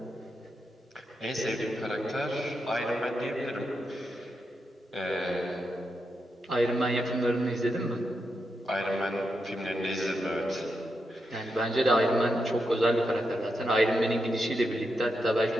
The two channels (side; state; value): both; normal; correlation 0.85